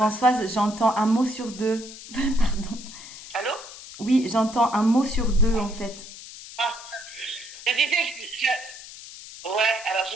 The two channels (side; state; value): left; noise; hiss, 15 dB below the sound